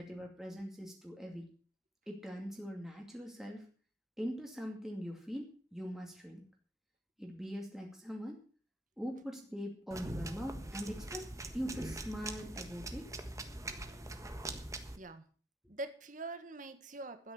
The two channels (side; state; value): both; normal; correlation 0.77